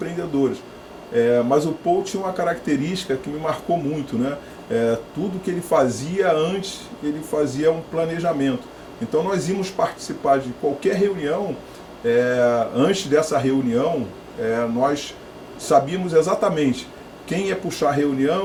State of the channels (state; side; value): identical; both; correlation 1.00